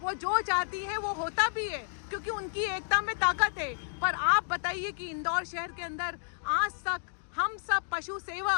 वो जो चाहती है वो होता भी है, क्योंकि उनकी एकता में ताकत है। पर आप बताइए कि इंदौर शहर के अंदर आज तक हम सब पशु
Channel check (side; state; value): right; silent; digital silence